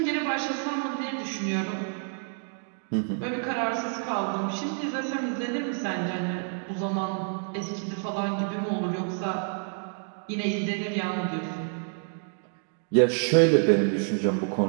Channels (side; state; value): left; silent; 59 dB below the other